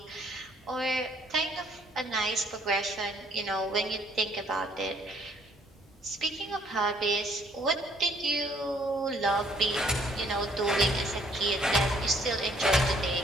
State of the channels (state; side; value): normal; both; correlation 0.63